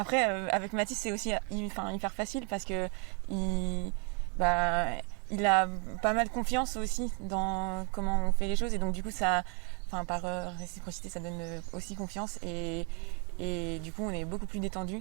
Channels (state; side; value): quieter; left; 36.6 dB